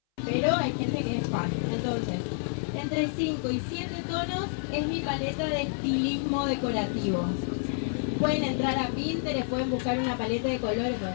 pero hay gente que es fan. Entonces, entre 5 y 7 tonos es mi paleta de estilismo decorativo. Pueden entrar a Pinterest, pueden buscar una paleta de colores.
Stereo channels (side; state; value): right; silent; 59 dB below the other